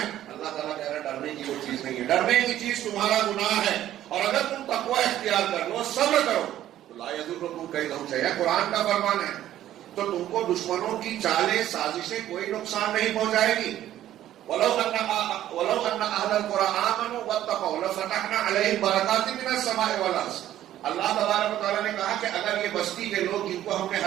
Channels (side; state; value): left; quieter; 12.6 dB